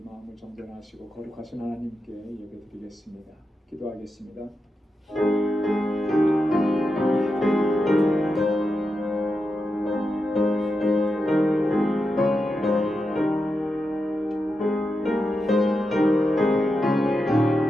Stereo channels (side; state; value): both; normal; correlation 0.88